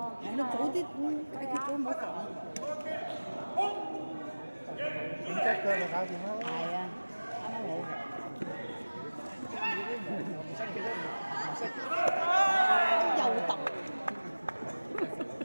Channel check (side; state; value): both; inverted; correlation -1.00